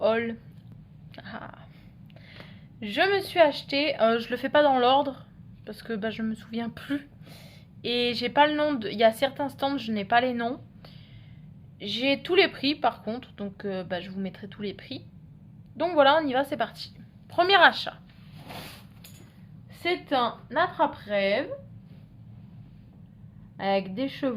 haul. Je me suis acheté, je le fais pas dans l'ordre parce que je me souviens plus. Et j'ai pas le nom, il y a certains stands, je n'ai pas les noms. J'ai tous les prix par contre, donc je vous mettrai tous les prix. Donc voilà, on y va, c'est parti. Premier achat. C'est un attrape-rêve avec des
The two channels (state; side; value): identical; both; correlation 1.00